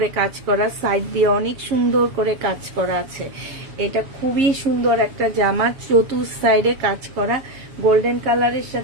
কাজ করা, সাইড দিয়ে অনেক সুন্দর করে কাজ করা আছে। এটা খুবই সুন্দর একটা জামা, চতুর সাইডে কাজ করা, গোল্ডেন কালারের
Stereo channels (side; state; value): left; late; 7.1 ms